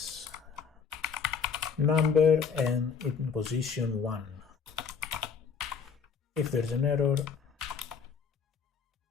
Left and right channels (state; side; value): quieter; right; 6.1 dB